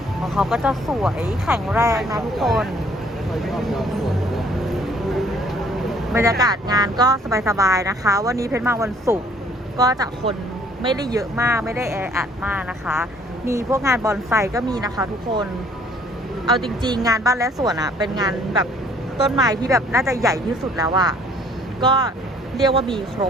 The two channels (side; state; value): both; normal; correlation 0.59